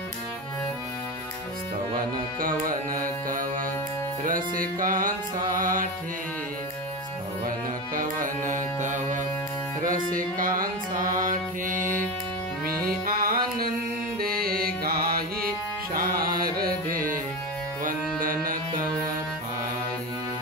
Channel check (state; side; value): normal; both; correlation 0.20